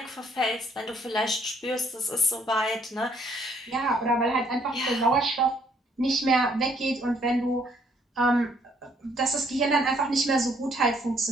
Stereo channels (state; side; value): normal; both; correlation 0.66